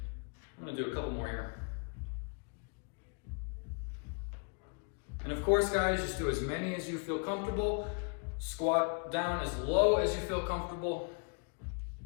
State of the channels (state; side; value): quieter; right; 39.0 dB